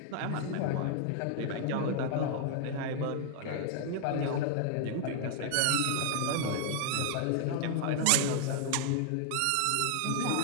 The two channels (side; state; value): both; different; correlation -0.01